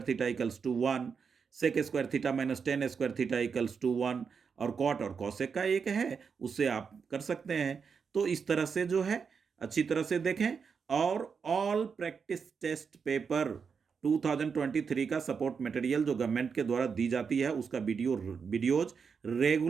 theta equals to 1, sec square theta minus tan square theta equals to 1 और कॉट और कॉसेक का एक है, उससे आप कर सकते हैं। तो इस तरह से जो है अच्छी तरह से देखें और ऑल प्रैक्टिस टेस्ट पेपर 2023 का सपोर्ट मटेरियल जो गवर्नमेंट के द्वारा दी जाती है उसका वीडियोज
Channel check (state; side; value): quieter; left; 6.0 dB